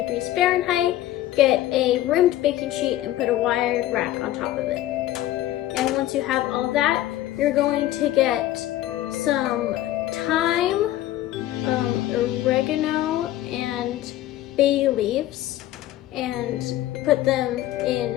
Fahrenheit, get a rimmed baking sheet and put a wired rack on top of it. And once you have all that, you're going to get some thyme, oregano, and bay leaves, and put them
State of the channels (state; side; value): quieter; right; 14.2 dB